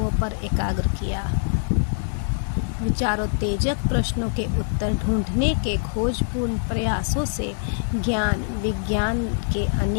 पर एकाग्र किया। विचारोत्तेजक प्रश्नों के उत्तर ढूंढने के खोजपूर्ण प्रयासों से ज्ञान विज्ञान के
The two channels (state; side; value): silent; right; digital silence